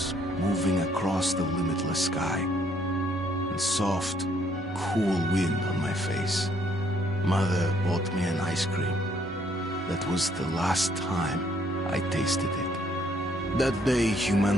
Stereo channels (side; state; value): both; normal; correlation 0.67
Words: moving across the limitless sky, and soft, cool wind on my face. Mother bought me an ice cream. That was the last time I tasted it. That day,